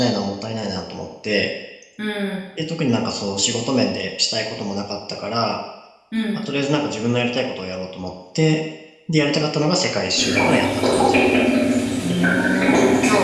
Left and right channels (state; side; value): identical; both; correlation 1.00